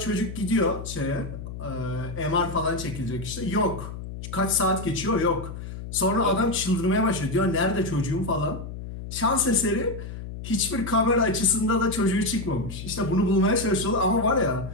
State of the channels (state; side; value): noise; left; hum, 9 dB below the sound